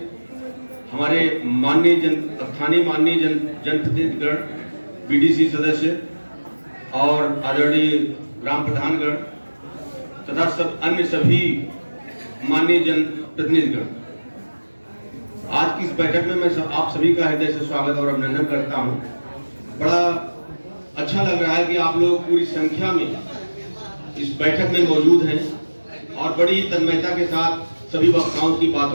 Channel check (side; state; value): both; inverted; correlation -1.00